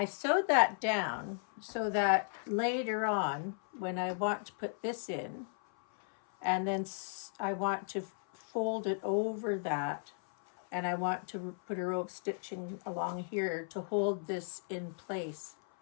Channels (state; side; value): silent; right; 54 dB below the other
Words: sewed that down so that later on, when I want to put this in, and then I want to fold it over that, and I want to put a row of stitching along here to hold this in place,